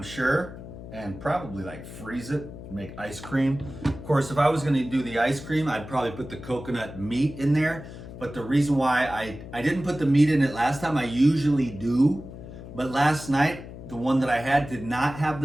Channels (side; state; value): left; noise; hum, 13 dB below the sound